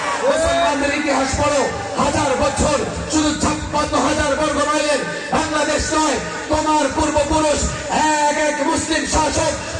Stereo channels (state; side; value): identical; both; correlation 1.00